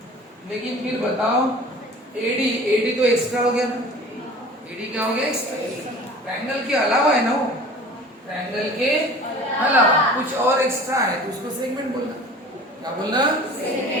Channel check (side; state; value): both; normal; correlation 0.43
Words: लेकिन फिर बताओ एडी, एडी तो एक्स्ट्रा हो गया ना। एडी क्या हो गया? एक्स्ट्रा। ट्रायंगल के अलावा है ना वो, ट्रायंगल के अलावा कुछ और एक्स्ट्रा है तो उसको सेगमेंट बोलना। क्या बोलना?